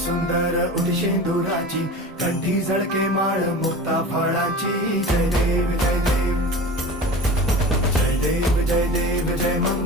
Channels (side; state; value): both; normal; correlation 0.34